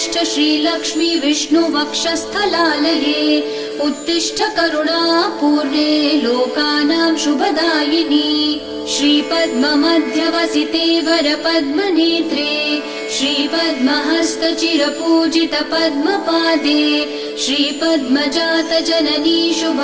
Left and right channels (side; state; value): both; identical; correlation 1.00